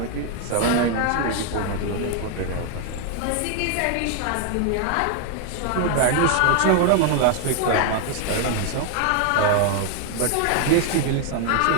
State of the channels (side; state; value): both; different; correlation 0.00